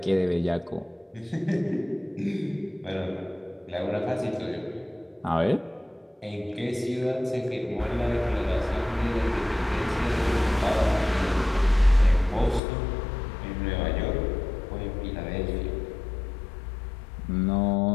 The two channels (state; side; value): drops out; right; at 12.6 s